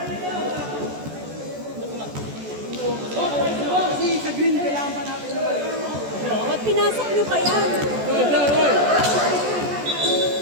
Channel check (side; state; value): left; late; 14 ms